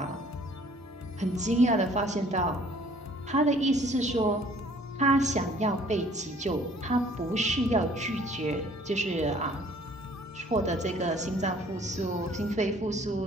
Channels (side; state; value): both; normal; correlation 0.56